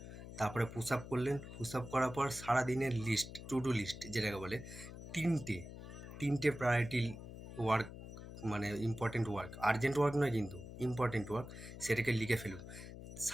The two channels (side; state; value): left; noise; hum, 12 dB below the sound